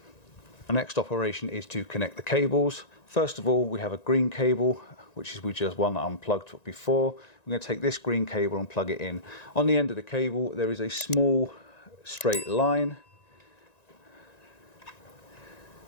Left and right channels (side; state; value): right; late; 1.9 ms